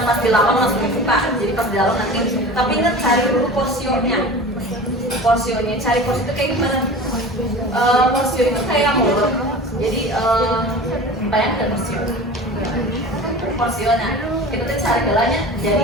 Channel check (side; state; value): both; normal; correlation 0.36